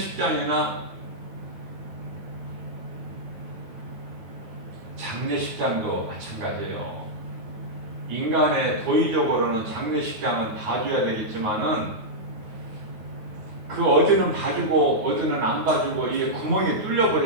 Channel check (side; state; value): left; late; 9.3 ms